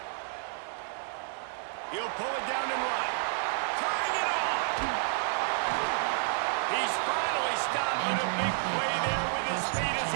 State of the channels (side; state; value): left; silent; 58 dB below the other